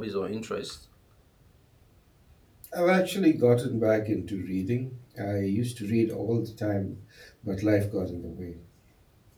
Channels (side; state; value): both; identical; correlation 1.00